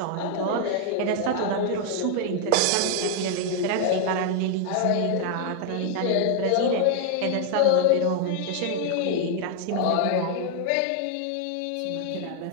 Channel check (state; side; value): different; both; correlation 0.00